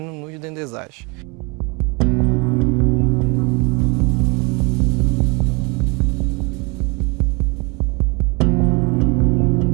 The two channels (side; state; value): left; quieter; 29.4 dB